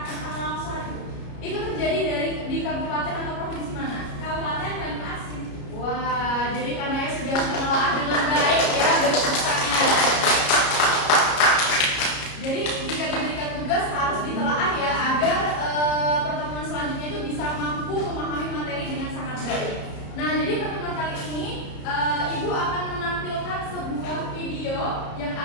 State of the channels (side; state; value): right; late; 33 ms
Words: tentang longsor. Itu terjadi di kabupaten atau provinsi mana? Kabupaten Banyuasin. Wah, jadi karena sudah menelaah dengan baik ya berpusatnya. Jadi jika diberikan tugas harus ditelaah ya agar pertemuan selanjutnya itu bisa mampu memahami materi dengan sangat baik. Nah, jadi pertemuan kali ini Ibu akan menampilkan sebuah video yang